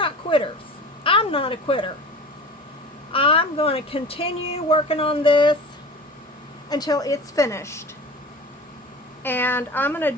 quitters. I'm not a quitter. I'm going to continue working on this until it's finished. And I'm going to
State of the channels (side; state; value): both; normal; correlation 0.37